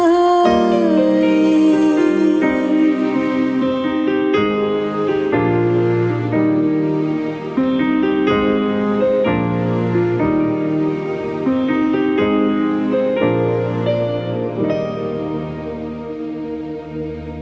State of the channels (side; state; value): both; identical; correlation 1.00